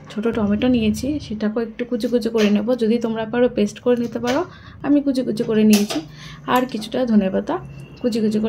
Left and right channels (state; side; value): identical; both; correlation 1.00